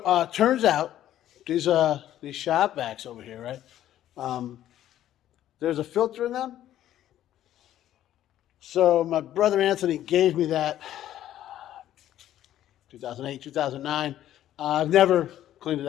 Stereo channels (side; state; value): right; quieter; 12.3 dB